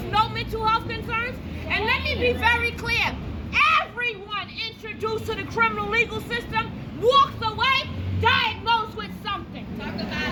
no mental health concerns? And let me be very clear. Everyone introduced to the criminal legal system walks away diagnosed with something. Talk about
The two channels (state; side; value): identical; both; correlation 1.00